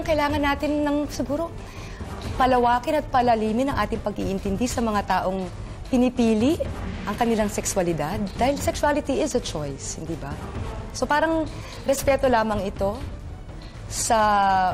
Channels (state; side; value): identical; both; correlation 1.00